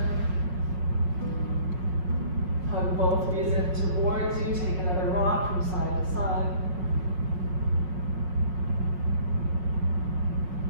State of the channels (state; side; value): late; left; 5.5 ms